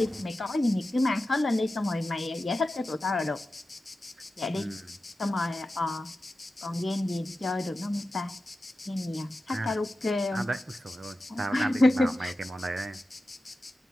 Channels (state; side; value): normal; both; correlation 0.93